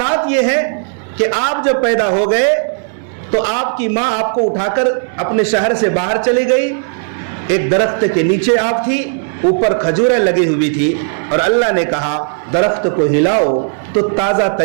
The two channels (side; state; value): left; silent; digital silence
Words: یہ ہے کہ آپ جب پیدا ہو گئے تو آپ کی ماں آپ کو اٹھا کر اپنے شہر سے باہر چلی گئی، ایک درخت کے نیچے آپ تھی، اوپر کھجوریں لگی ہوئی تھی اور اللہ نے کہا درخت کو ہلاؤ تو تازہ